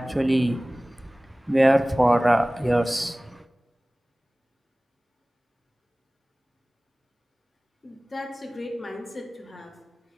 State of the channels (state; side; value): normal; both; correlation 0.98